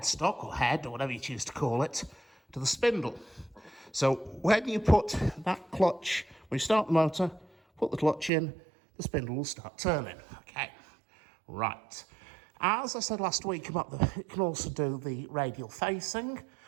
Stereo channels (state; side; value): drops out; left; at 8.3 s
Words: or head, or whatever you choose to call it, to the spindle. So when you put that clutch, when you start the motor, put the clutch in, the spindle will start turning. Okay, right. As I said last week about it can also do the radial facing.